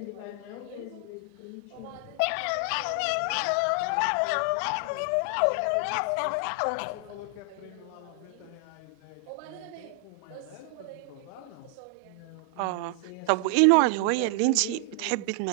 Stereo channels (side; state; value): both; different; correlation 0.00